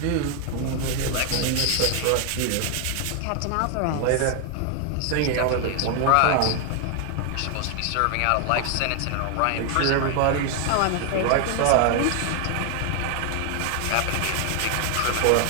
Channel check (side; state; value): both; different; correlation 0.00